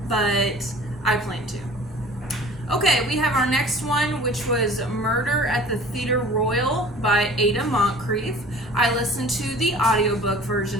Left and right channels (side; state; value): both; normal; correlation 0.45